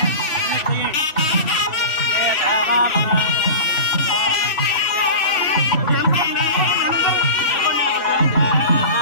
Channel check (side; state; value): right; late; 3.1 ms